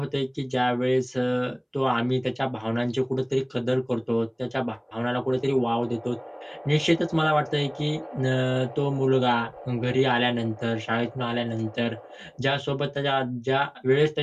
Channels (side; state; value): both; identical; correlation 1.00